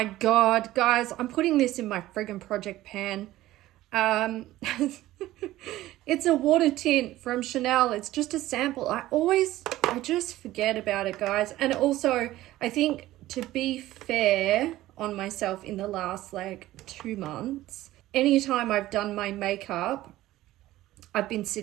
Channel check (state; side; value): quieter; left; 15.7 dB